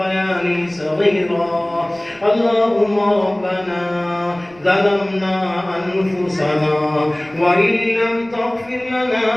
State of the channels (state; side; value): noise; right; rumble, 28 dB below the sound